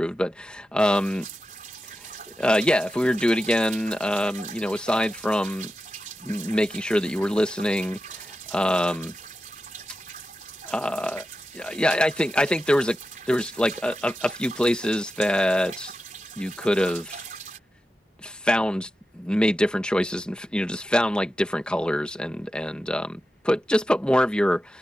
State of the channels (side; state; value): both; normal; correlation 0.91